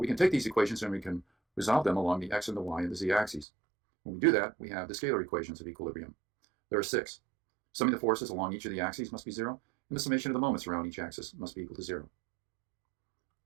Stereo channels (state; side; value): drops out; left; at 3.5 s